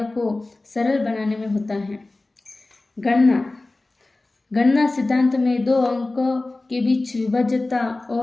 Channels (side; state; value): right; quieter; 3.0 dB